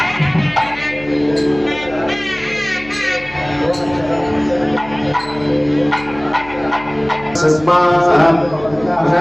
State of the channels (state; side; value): noise; left; hum, 19 dB below the sound